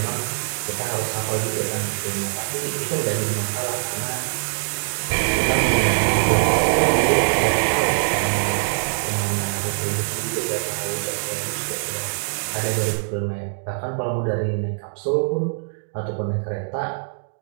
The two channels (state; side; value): silent; left; digital silence